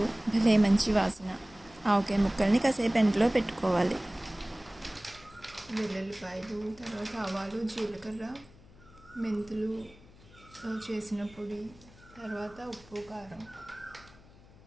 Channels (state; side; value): noise; left; hum, 23 dB below the sound